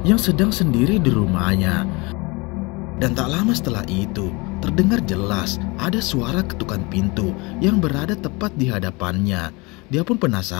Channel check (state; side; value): quieter; right; 26.4 dB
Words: yang sedang sendiri di rumahnya. Dan tak lama setelah itu, terdengar jelas ada suara ketukan pintu yang berada tepat di hadapannya. Dia pun